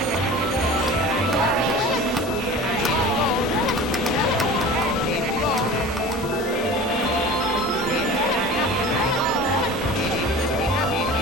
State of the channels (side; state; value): both; normal; correlation 0.39